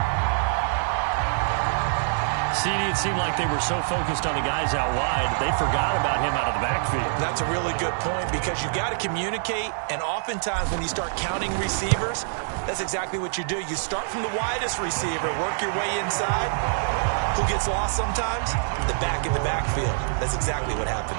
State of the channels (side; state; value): left; silent; digital silence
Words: CD, it seemed like they were so focused on the guys out wide, they forgot about him out of the backfield. That's a really good point because you've got to communicate, and oftentimes when you start counting receivers, that's exactly what you do. You start from the widest receiver, work your way inside. Who gets lost sometimes? The back in the backfield. That's exactly what